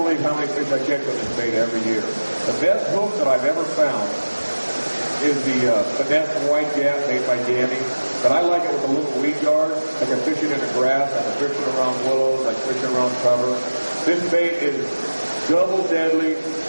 how many fish I catch with this bait every year. The best hook that I've ever found is the finesse white gap made by Danny. But I like it with a little weed guard. I can fish it in the grass, I can fish it around willows, I can fish it around cover. This bait is double deadly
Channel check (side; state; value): both; inverted; correlation -1.00